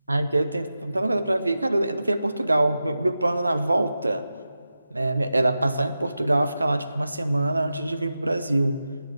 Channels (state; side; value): inverted; both; correlation -0.92